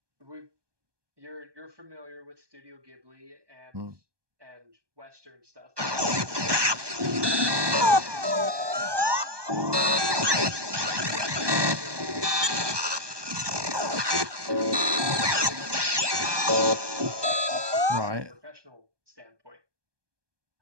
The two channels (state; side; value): late; left; 1.2 ms